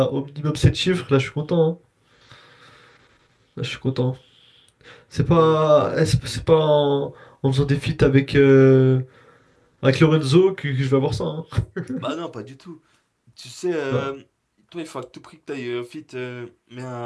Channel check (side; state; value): both; identical; correlation 1.00